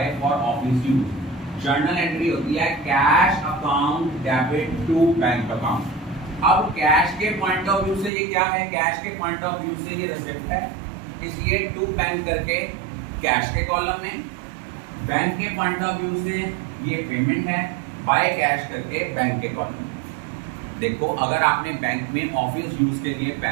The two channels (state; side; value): drops out; left; at 8.1 s